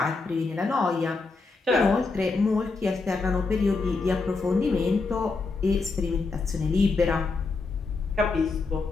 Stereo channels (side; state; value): right; quieter; 4.0 dB